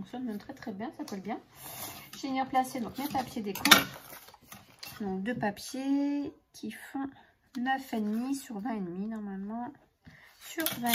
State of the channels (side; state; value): both; identical; correlation 1.00